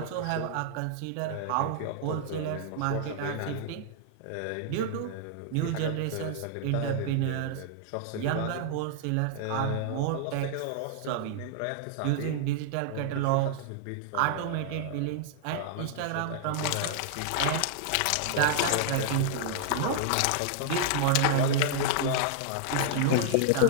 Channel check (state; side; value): different; both; correlation -0.01